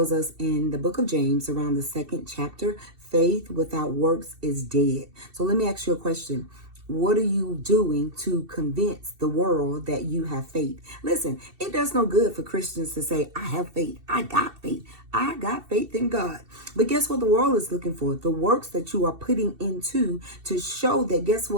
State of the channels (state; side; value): late; left; 2.7 ms